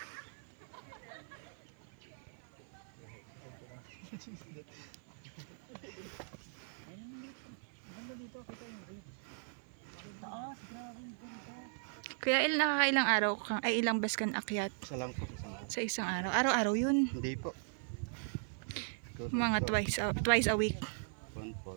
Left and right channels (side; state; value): left; silent; 52 dB below the other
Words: Taas, grabe yung ganda. Kuya Il, nakakailang araw kang, ay ilang bus kan akyat Isa lang po. Isang araw. sa isang araw? Araw-araw yun. Hindi po. Mga twice a week. Yun po.